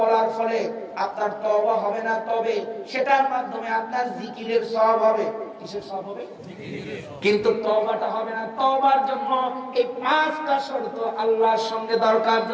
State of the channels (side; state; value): both; identical; correlation 1.00